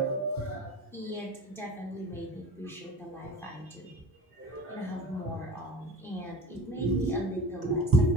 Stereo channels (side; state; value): both; normal; correlation 0.38